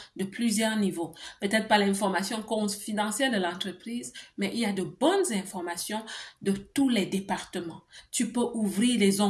de plusieurs niveaux. Peut-être pas l'information confidentielle de l'entreprise, mais il y a de bonnes informations de tous les départements. Tu peux ouvrir les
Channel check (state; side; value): identical; both; correlation 1.00